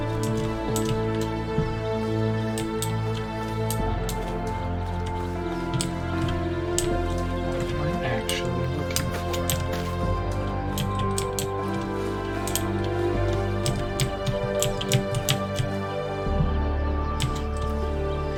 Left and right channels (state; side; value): identical; both; correlation 1.00